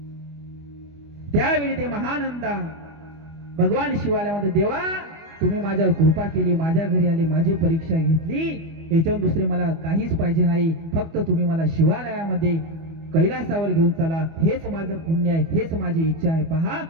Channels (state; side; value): late; left; 25 ms